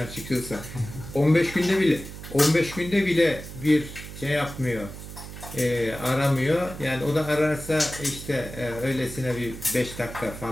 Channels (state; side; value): noise; right; hum, 12 dB below the sound